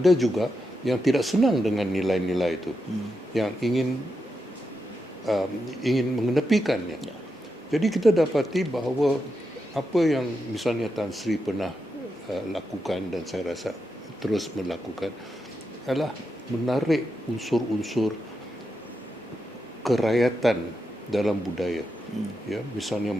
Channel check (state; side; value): normal; both; correlation 0.86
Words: juga yang tidak senang dengan nilai-nilai itu, yang ingin mengenepikannya. Jadi kita dapati bahawa apa yang misalnya Tan Sri pernah lakukan dan saya rasa terus melakukan adalah menarik unsur-unsur kerakyatan dalam budaya, ya, misalnya